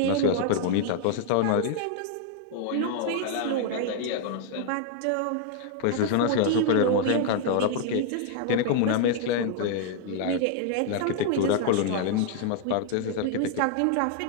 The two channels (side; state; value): both; different; correlation 0.00